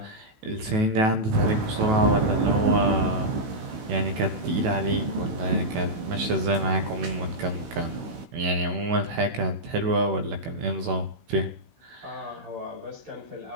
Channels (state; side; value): late; left; 16 ms